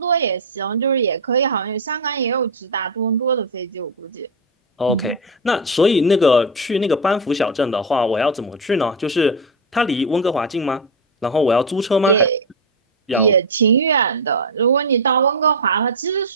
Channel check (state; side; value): normal; both; correlation 0.09